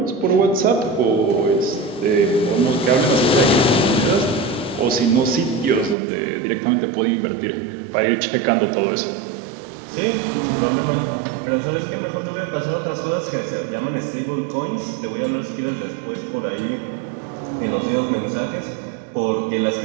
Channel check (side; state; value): left; drops out; at 6.0 s